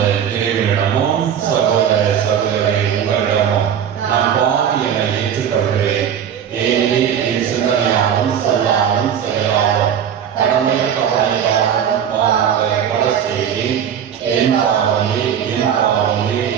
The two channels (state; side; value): quieter; left; 8.7 dB